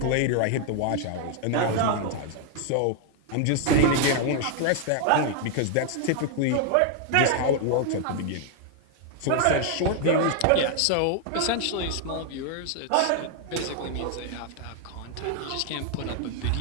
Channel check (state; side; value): different; both; correlation 0.00